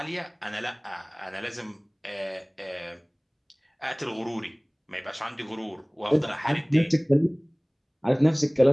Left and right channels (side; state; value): both; identical; correlation 1.00